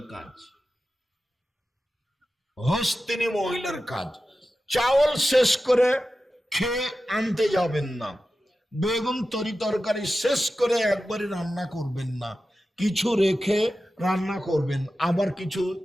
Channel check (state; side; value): normal; both; correlation 0.93